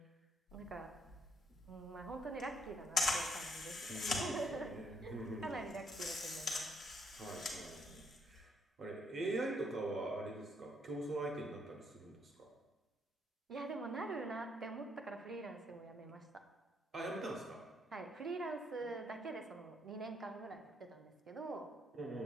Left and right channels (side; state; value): both; normal; correlation 0.71